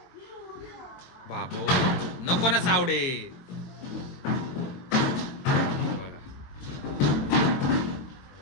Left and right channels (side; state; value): right; late; 22 ms